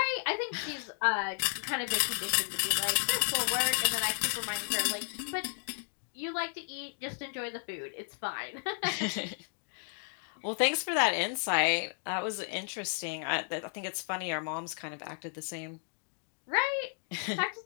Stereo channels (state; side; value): silent; right; 56 dB below the other